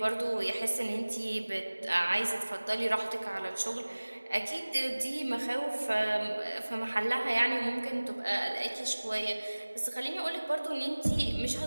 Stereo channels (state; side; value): inverted; both; correlation -1.00